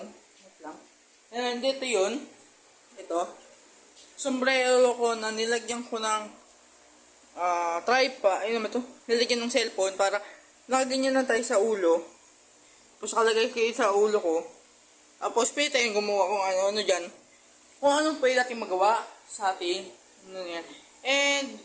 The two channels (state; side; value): identical; both; correlation 1.00